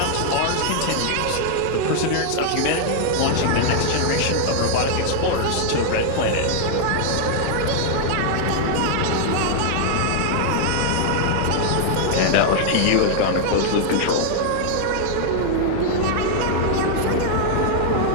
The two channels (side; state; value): both; different; correlation 0.00